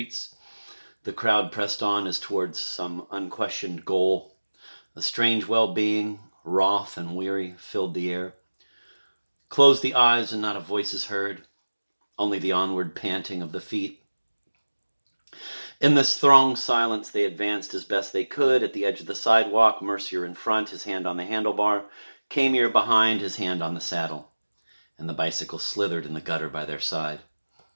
the crowd pressed on as towards some unquestioned goal. A strange well-being, wroth and weary, filled the air. Closed the eyes and not a voice is heard, only the onward panting of the feet. In this thronged silence, they advanced as best they could. At the edge of the sidewalk, Mercier in front, his hand on the handlebar, Camier behind, his hand on the saddle, and the bicycle slithered in the gutter by their side.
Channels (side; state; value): both; inverted; correlation -1.00